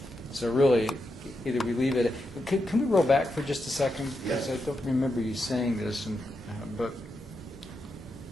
So really, either we leave it. Can we roll back for just a second? Because I don't remember you saying this, but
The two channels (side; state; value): both; normal; correlation 0.85